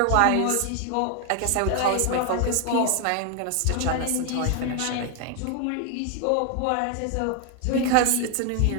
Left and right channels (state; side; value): different; both; correlation 0.01